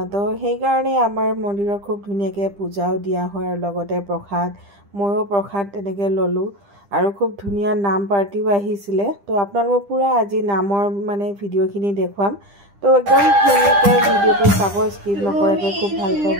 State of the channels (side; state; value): left; late; 10 ms